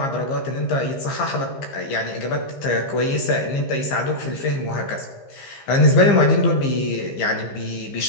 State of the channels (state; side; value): late; right; 15 ms